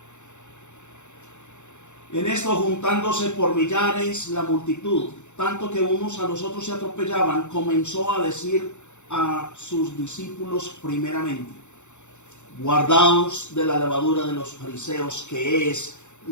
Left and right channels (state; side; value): late; right; 0.84 ms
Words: en esto juntándose por millares la multitud, tanto que unos a los otros se atropellaban, comenzó a decir a sus discípulos primeramente: guardaos de la levadura de los fariseos, que es